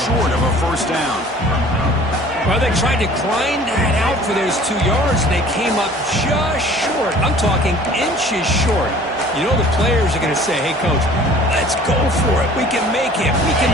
short of a first down. Well, they tried to grind that out for those 2 yards, and they came up just short. I'm talking inches short. You know the players are going to say, hey, Coach, let's go for it. We can make it. We can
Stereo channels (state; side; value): normal; both; correlation 0.49